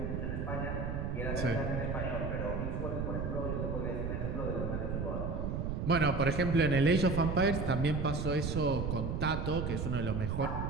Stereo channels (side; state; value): right; noise; rumble, 2 dB below the sound